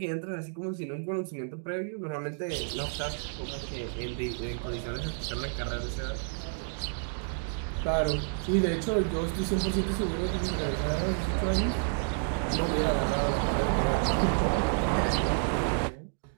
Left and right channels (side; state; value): left; silent; digital silence